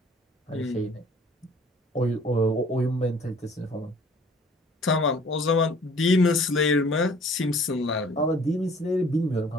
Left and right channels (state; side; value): normal; both; correlation 0.53